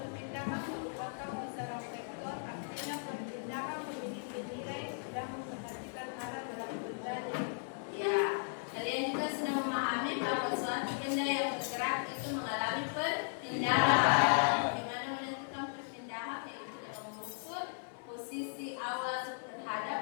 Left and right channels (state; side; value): silent; right; 53 dB below the other